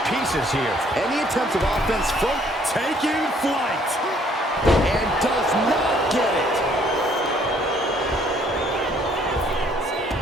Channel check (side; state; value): both; normal; correlation 0.62